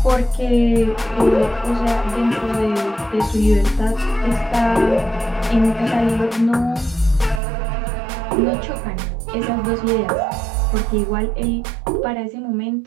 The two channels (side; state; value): left; drops out; at 7.4 s